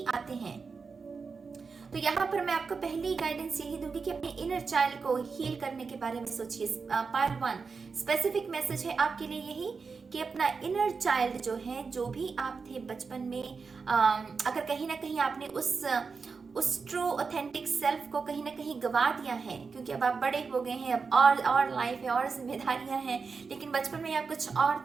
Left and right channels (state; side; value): quieter; left; 5.0 dB